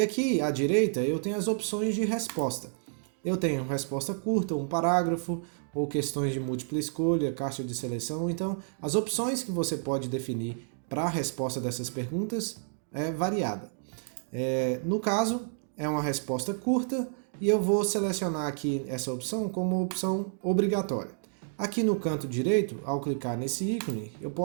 aqui à direita eu tenho as opções de resposta. Eu tenho resposta curta, um parágrafo, ou questões de múltipla escolha, caixa de seleção. Então, as opções que você pode definir para a resposta dessas perguntas é variada. No caso, é uma resposta curta e eu vou selecionar aqui essa opção como opção obrigatória. Aqui no canto direito, ao clicar nesse ícone, eu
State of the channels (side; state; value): left; silent; digital silence